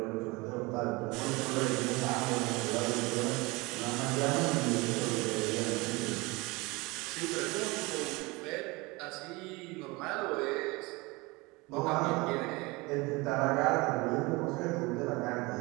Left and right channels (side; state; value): left; quieter; 24.4 dB